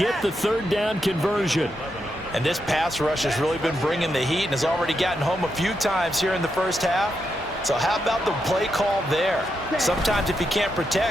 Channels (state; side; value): normal; both; correlation 0.83